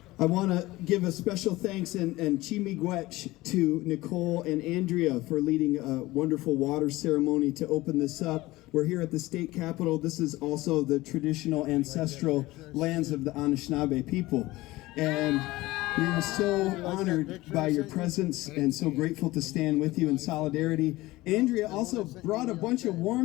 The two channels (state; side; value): quieter; right; 18.9 dB